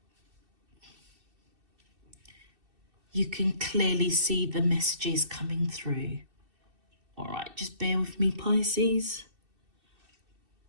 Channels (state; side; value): late; left; 2.7 ms